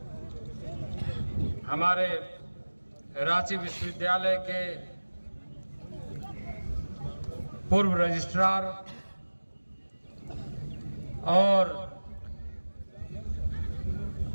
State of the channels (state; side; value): inverted; both; correlation -1.00